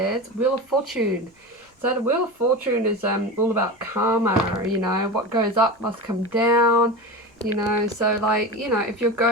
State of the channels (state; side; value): normal; both; correlation 0.26